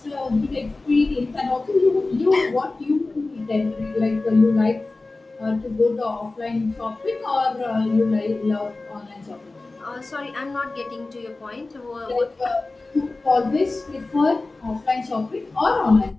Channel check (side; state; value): right; quieter; 3.3 dB